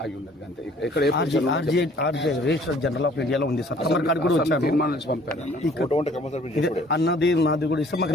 ఆగి ఉన్నది అంతే. ఇక్కడ రిజిస్టర్ జనరల్ ఆఫ్ ఇండియాలో ఉంది సార్. తీర్మానం నుంచి పంపారు అన్నది నాది కూడా ఇస్తే మాకు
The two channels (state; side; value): normal; both; correlation 0.56